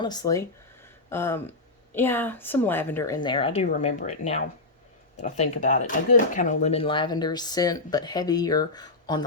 Yeah, some lavender in there. I do remember it now that I think about it. A good kind of lemon lavender scent, but heavier on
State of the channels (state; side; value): quieter; right; 3.2 dB